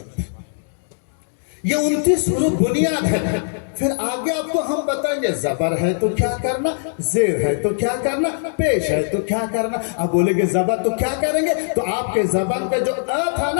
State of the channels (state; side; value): silent; right; digital silence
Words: ये 29 हुरूफ बुनियाद है। फिर आगे आपको हम बताएंगे जबर है तो क्या करना, जेर है तो क्या करना, पेश है तो क्या करना। अब बोलेंगे जबर तो क्या करेंगे, तो आपके जबान पे जो अ था